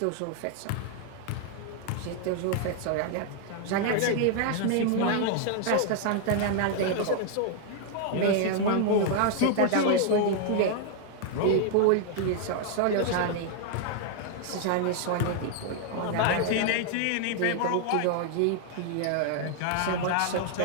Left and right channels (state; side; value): different; both; correlation 0.00